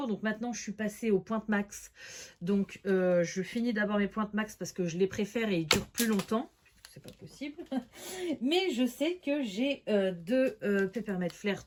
Donc maintenant, je suis passée aux pointes max. Donc, je finis d'abord mes pointes max parce que je les préfère et ils durent plus longtemps. C'est pas possible. Mais je sais que j'ai deux Peppermint Flair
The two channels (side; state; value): both; identical; correlation 1.00